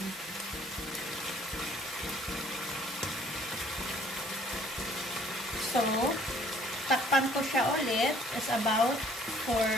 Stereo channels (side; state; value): both; normal; correlation 0.58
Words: So, takpan ko siya ulit is about